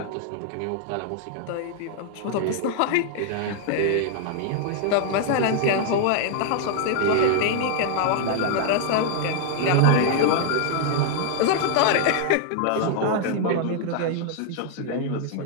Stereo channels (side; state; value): both; different; correlation 0.00